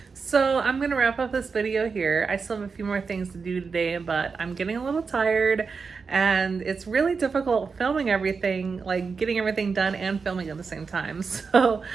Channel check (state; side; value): quieter; left; 5.1 dB